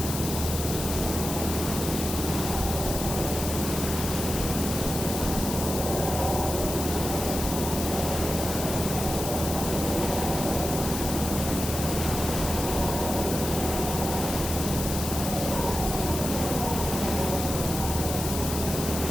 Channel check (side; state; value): left; noise; hiss, 5 dB below the sound